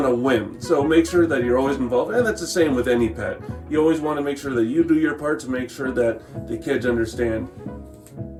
a whim. So make sure that you're always involved, and that's the same with any pet. You always want to make sure that you do your part to make sure that the kids understand.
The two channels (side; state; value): both; identical; correlation 1.00